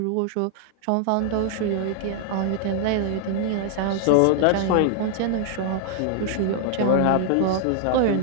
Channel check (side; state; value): both; different; correlation -0.01